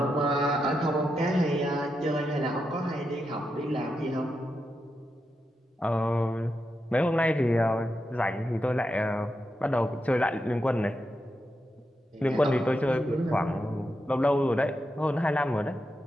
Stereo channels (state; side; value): normal; both; correlation 0.86